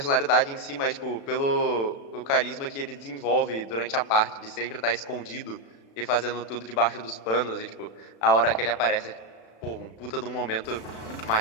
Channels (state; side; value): late; right; 36 ms